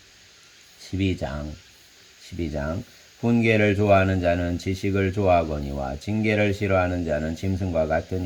12장 훈계를 좋아하는 자는 지식을 좋아하거니와 징계를 싫어하는 자는 짐승과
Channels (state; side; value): identical; both; correlation 1.00